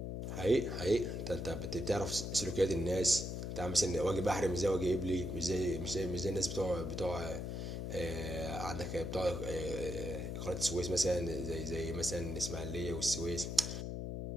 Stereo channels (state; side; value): noise; left; hum, 4 dB below the sound